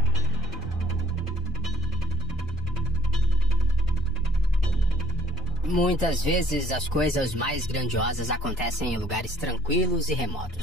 Muitas vezes as coisas mais grandiosas acontecem em lugares tranquilos e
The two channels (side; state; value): both; normal; correlation 0.43